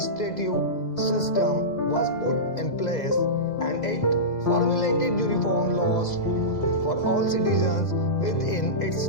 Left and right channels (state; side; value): late; right; 2.0 ms